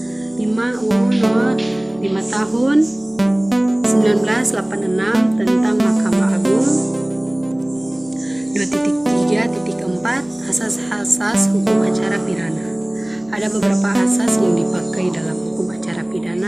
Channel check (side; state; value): left; noise; hum, 29 dB below the sound